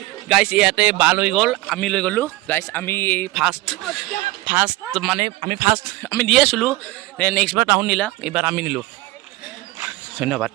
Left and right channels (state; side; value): quieter; left; 19.3 dB